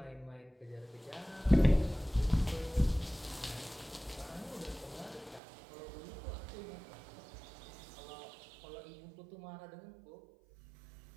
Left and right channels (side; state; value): left; drops out; at 5.4 s